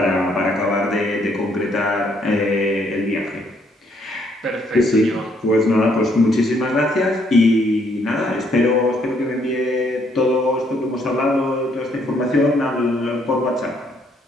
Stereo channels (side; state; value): both; normal; correlation 0.69